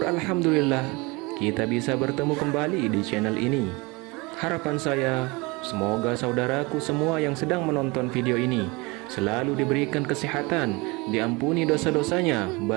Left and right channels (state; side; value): quieter; left; 25.8 dB